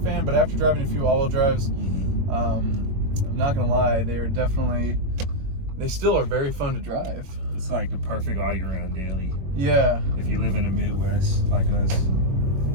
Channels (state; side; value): late; left; 21 ms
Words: fan, but after driving a few all-wheel drives, I'm not gonna lie, they still are very fun to drive. It's like the perfect all-year-round daily. Yeah. If you live in the Midwest like us.